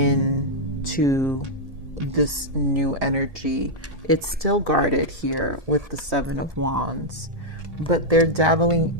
this new energy. It's still guarded here with the Seven of Wands, but they're dabbling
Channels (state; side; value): late; left; 1.7 ms